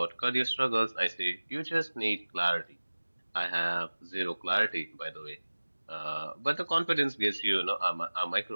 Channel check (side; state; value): both; inverted; correlation -1.00